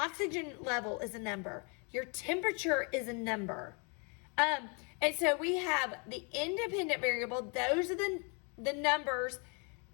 level is a number. Your temperature is a number. And so we have the independent variable. Those are the numbers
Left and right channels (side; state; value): right; quieter; 35.1 dB